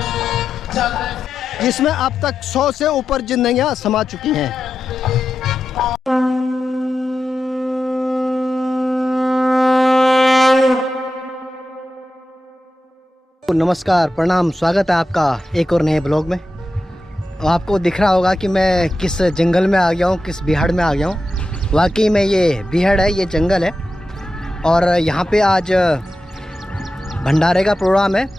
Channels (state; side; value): normal; both; correlation 0.90